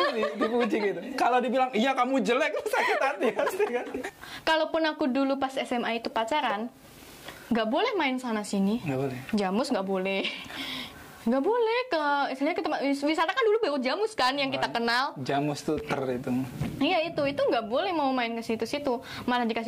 dipuji gitu. Kalau dibilang iya kamu jelek sakit hati pasti kan. Kalaupun aku dulu pas SMA itu pacaran, nggak boleh main sana sini. Nggak boleh. Jamus nggak boleh. Nggak boleh istilahnya ke tempat wisata kan dulu baru Jamus kan yang kita kenal. Jamus tuh itu. Iya itu nggak boleh mau main ke situ-situ. Malah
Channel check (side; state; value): both; identical; correlation 1.00